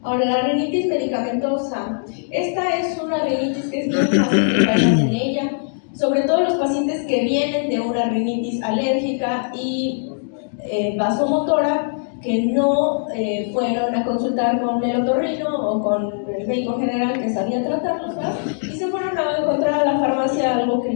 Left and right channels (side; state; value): right; silent; digital silence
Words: Ahora, la rinitis medicamentosa. Esta es una rinitis que es bien fácil que caigan en ella, sobre todo los pacientes que vienen de una rinitis alérgica y vasomotora, que no fueron a consultar con el otorrino o con el médico general que sabía tratarlos, ¿verdad? Y se fueron a encontrar a la farmacia algo que